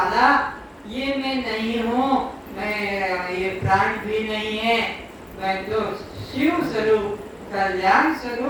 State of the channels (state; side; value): identical; both; correlation 1.00